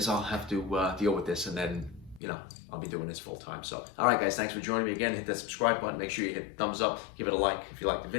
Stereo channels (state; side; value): drops out; right; at 2.2 s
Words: I'll have to deal with this, and then I'll be doing this full time. So, all right, guys, thanks for joining me again. Hit that subscribe button. Make sure you hit thumbs up. Give it a like if you like the